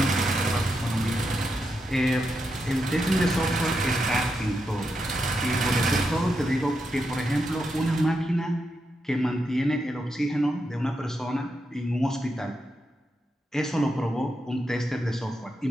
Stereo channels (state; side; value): normal; both; correlation 0.85